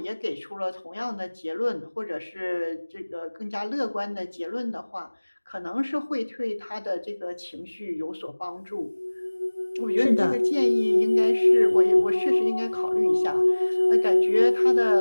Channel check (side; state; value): both; inverted; correlation -1.00